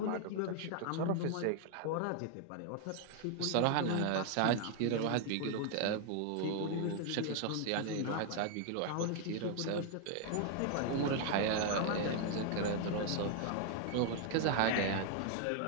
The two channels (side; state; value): both; different; correlation 0.00